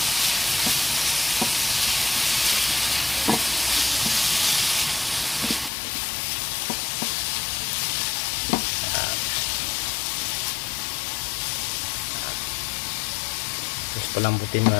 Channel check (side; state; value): right; drops out; at 5.7 s